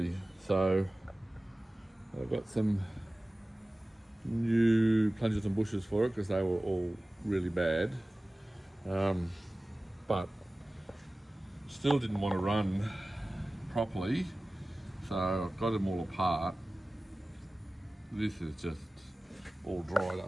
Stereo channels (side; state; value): both; normal; correlation 0.97